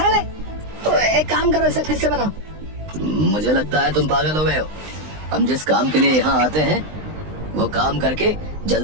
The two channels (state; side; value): late; left; 20 ms